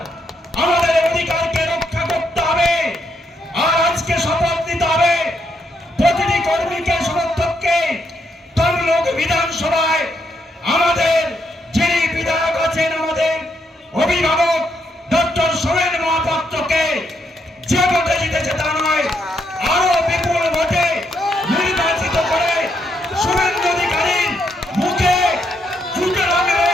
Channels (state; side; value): normal; both; correlation 0.77